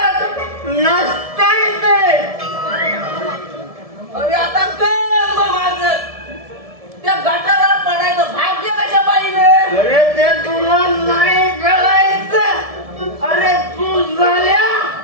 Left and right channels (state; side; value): late; left; 1.7 ms